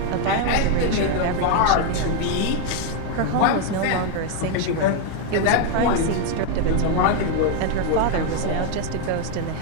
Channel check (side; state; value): both; different; correlation 0.01